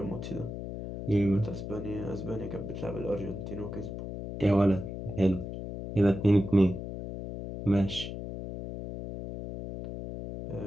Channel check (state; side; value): noise; left; hum, 8 dB below the sound